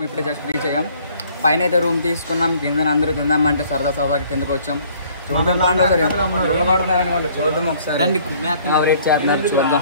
ఇప్పుడే జస్ట్ రీచ్ అయ్యాం. పైన అయితే రూమ్ తీసుకున్నాం. కింద అందరూ తిందామంటే సరదాకి కిందకి వచ్చాం. చూద్దాం అనుకోండి. చూద్దాం ఒకసారి చేస్తున్నారు.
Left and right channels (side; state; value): both; inverted; correlation -0.58